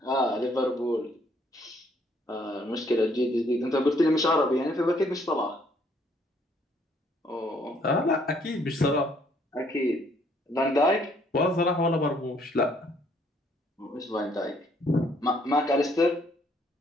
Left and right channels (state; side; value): normal; both; correlation 0.65